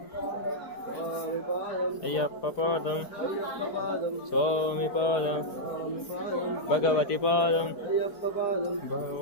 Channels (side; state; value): right; late; 4.5 ms